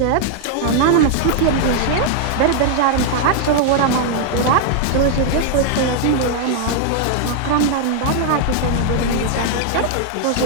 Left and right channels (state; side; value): different; both; correlation 0.00